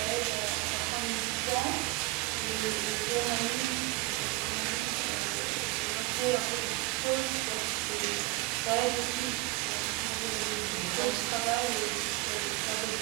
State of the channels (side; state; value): left; quieter; 20.4 dB